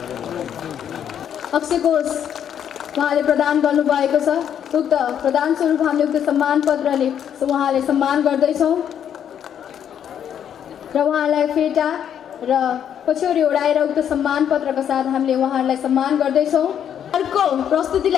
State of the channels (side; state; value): right; quieter; 9.1 dB